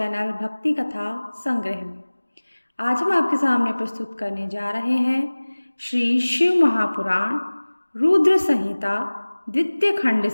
भक्ति कथा संग्रह में। आज हम आपके सामने प्रस्तुत करने जा रहे हैं श्री शिव महापुराण रुद्र संहिता द्वितीय खंड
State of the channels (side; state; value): both; inverted; correlation -1.00